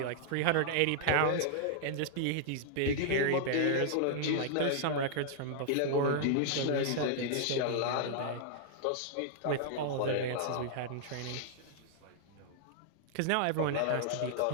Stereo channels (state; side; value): different; both; correlation -0.01